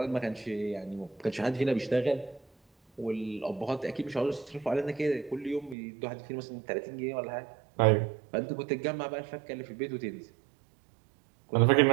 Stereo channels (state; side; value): drops out; left; at 5.8 s